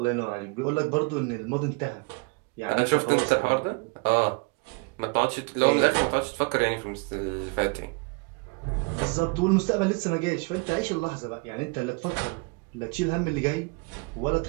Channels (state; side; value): quieter; left; 31.0 dB